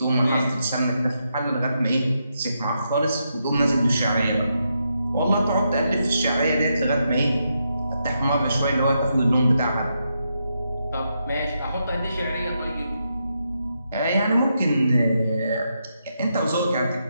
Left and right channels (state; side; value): inverted; both; correlation -0.82